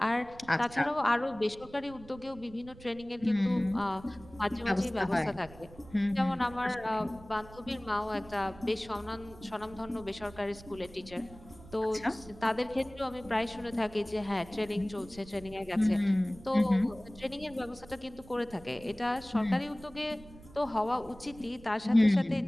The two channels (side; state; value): right; noise; rumble, 20 dB below the sound